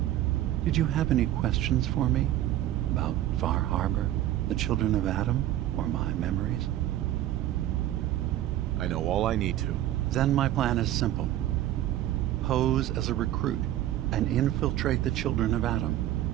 Did you have any questions for me? About Far Harbor, the children of Adam, or my memories? I know all I need to. Then my plan is simple. Pose as a recruit and infiltrate the children of Adam.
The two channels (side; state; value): left; quieter; 13.4 dB